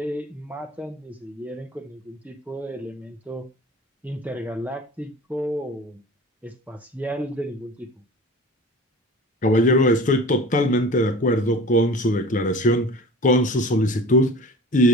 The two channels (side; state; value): both; normal; correlation 0.39